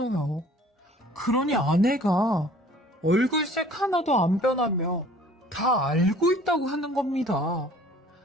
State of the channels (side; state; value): both; normal; correlation 0.52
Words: 그러니 아내가 얼굴색 하나도 안 변하며 다 알고 있다고 하는 겁니다.